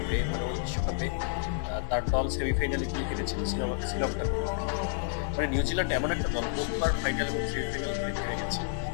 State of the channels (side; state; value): right; silent; 58 dB below the other